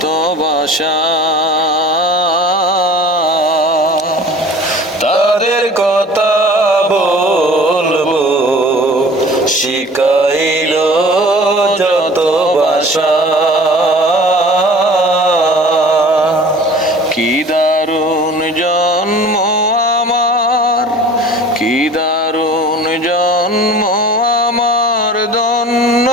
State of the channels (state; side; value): normal; both; correlation 0.44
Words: ভাষা। তাদের কথা বলবো, শিখাইল যত ভাষা। কি দারুণ জন্ম আমার, কি দারুণ জন্ম আমার, ধন্য